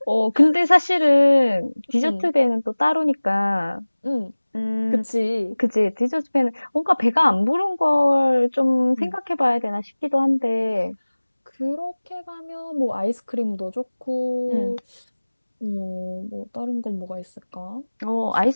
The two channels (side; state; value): both; inverted; correlation -1.00